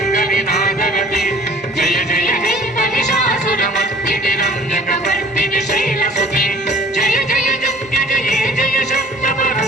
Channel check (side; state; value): both; normal; correlation 0.51